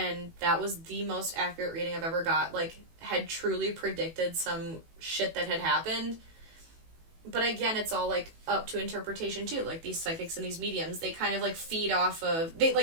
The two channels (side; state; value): left; late; 18 ms